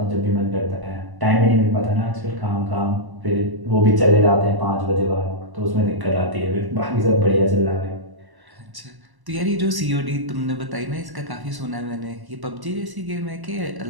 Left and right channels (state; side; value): late; left; 1.1 ms